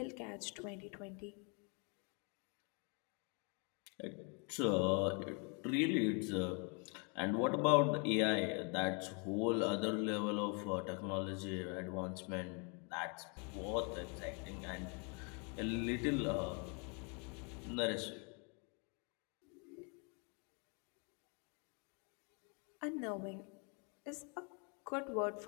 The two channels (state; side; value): quieter; right; 36.0 dB